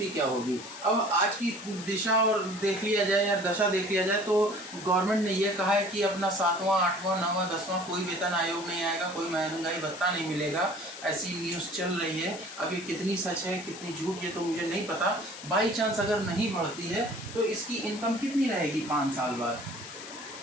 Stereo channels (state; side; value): noise; left; hiss, 12 dB below the sound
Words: क्या होगी। अब आज की दिशा और देख लिया जाए या दशा देख लिया जाए तो गवर्नमेंट ने यह कहा है कि अपना 7वां, 8वां, 9वां, 10वां कोई वेतन आयोग नहीं आएगा, कोई महंगाई भत्ता नहीं मिलेगा, ऐसी न्यूज़ चल रही है। अब ये कितनी सच है कितनी झूठ ये तो मुझे नहीं पता। बाई चांस अगर नहीं बढ़ती है तो इसकी इनकम कितनी रहेगी 5 साल बाद,